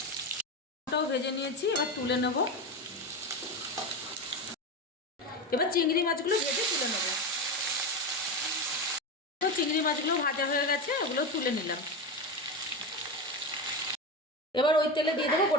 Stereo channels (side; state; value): both; normal; correlation 0.19